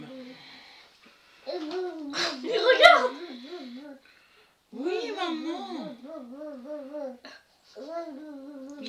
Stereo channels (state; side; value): identical; both; correlation 1.00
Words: Mais regarde. Oui, maman.